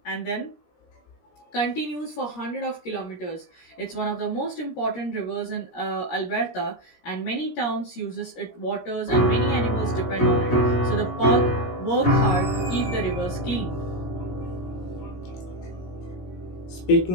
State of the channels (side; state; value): right; late; 17 ms